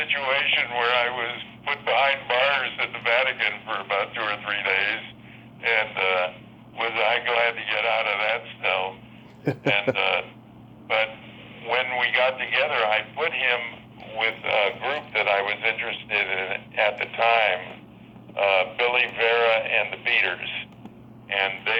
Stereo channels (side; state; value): both; identical; correlation 1.00